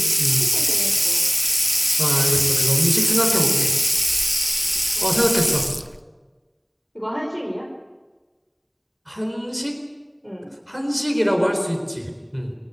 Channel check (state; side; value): identical; both; correlation 1.00